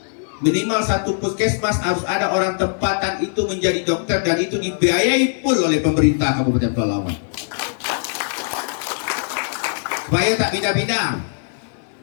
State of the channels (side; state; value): right; silent; digital silence